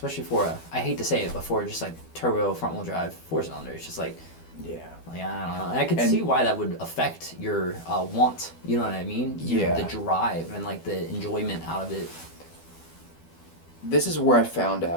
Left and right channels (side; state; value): right; late; 12 ms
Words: for I hate to say it, but for just like turbo front wheel drive 4-cylinder, it's just like, like I don't know. And I could see why that would affect your want. You know what I mean? The drive and like the enjoyment out of it. This is where I found